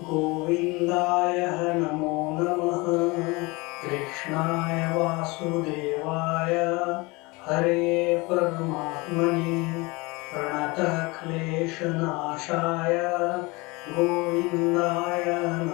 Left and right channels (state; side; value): quieter; right; 25.0 dB